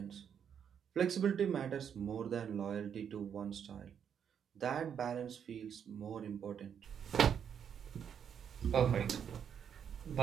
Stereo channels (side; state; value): left; quieter; 8.1 dB